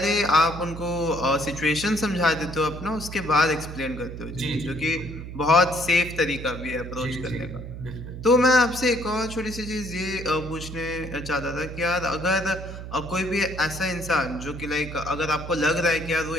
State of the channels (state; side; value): noise; right; hum, 10 dB below the sound